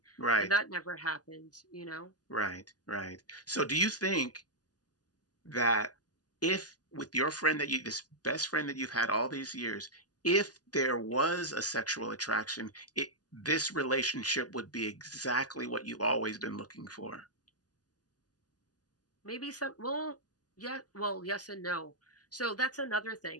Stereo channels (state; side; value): late; right; 0.68 ms